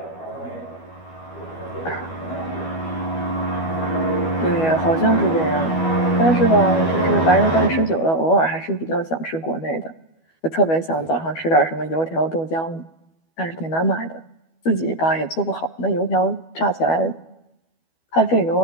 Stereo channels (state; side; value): late; right; 12 ms